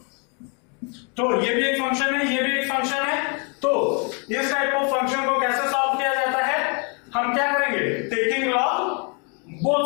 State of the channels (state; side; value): quieter; right; 35.7 dB